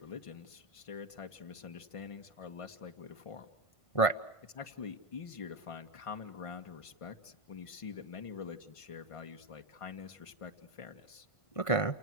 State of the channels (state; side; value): late; right; 1.5 ms